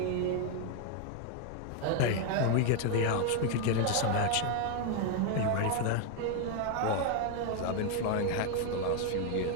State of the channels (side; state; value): both; different; correlation 0.00